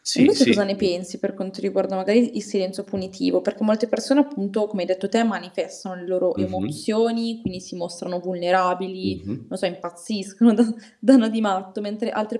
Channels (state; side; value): identical; both; correlation 1.00